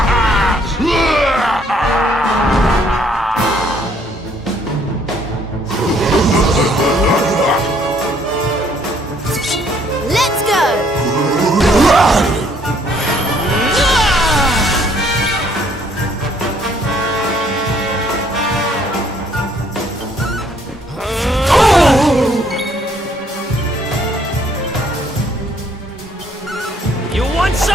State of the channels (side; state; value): both; normal; correlation 0.65